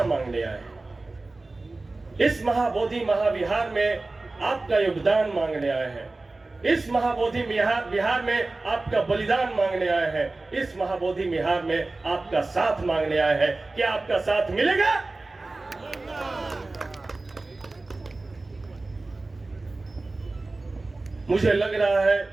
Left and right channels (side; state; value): left; quieter; 3.2 dB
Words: मांगने आए हैं। इस महाबोधि महाविहार में आपका योगदान मांगने आए हैं। इस महाबोधि विहार में आपका बलिदान मांगने आए हैं। इस महाबोधि विहार में आपका साथ मांगने आए हैं। क्या आपका साथ मिलेगा? मुझे लग रहा है